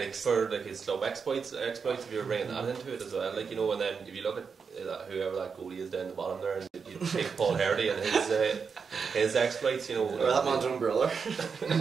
For his club exploits, if you're bringing that into it as well, like, and then if you look at whoever that goalie is down the bottom there, and you take Paul Hardy and his exploits, Well, that man's own brother. No,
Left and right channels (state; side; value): quieter; left; 5.7 dB